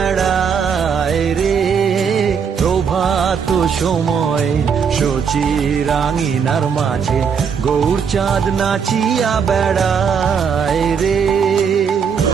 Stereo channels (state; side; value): quieter; left; 6.6 dB